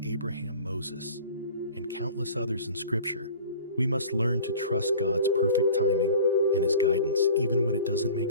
Abraham, Moses, and countless others in Scripture, we must learn to trust God's perfect timing and His guidance even when it doesn't make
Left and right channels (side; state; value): both; inverted; correlation -0.42